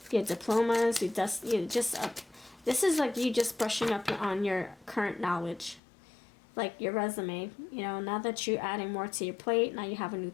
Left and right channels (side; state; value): right; drops out; at 5.8 s